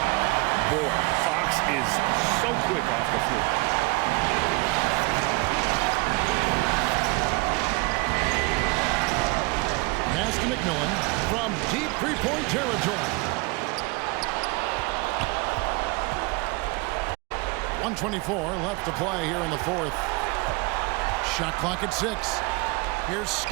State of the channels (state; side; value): quieter; left; 26.6 dB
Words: Boy, Fox is so quick off the floor. Pass to McMillan from deep three-point territory. 1:24 left to play here in the 4th. Shot clock at 6. Here's